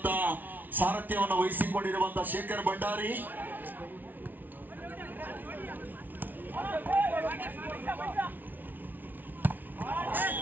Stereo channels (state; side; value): late; left; 0.085 ms